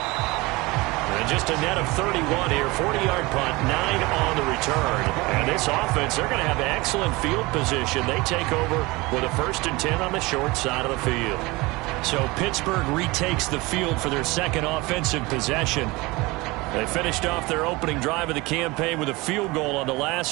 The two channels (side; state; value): left; quieter; 22.9 dB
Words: And just a net of 31 here. 40-yard punt, 9 on the return. And this offense, they're going to have excellent field position. They take over with a 1st and 10 on the short side of the field. So Pittsburgh retakes the field for their second offensive possession. They finished off their opening drive of the campaign with a field goal on the